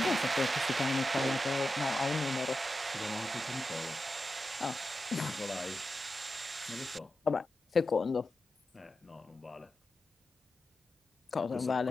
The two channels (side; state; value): both; normal; correlation 0.90